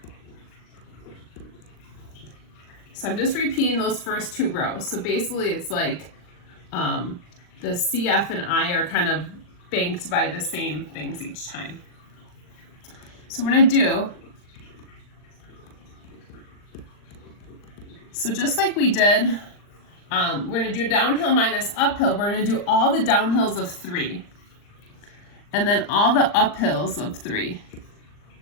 So I'm just repeating those first 2 rows. So basically it's like the CF and I are kind of banked by the same things each time. So we're going to do, so just like we did, we're going to do downhill minus uphill. We're going to do all the downhills of 3. And then all the uphills of 3.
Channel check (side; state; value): right; late; 39 ms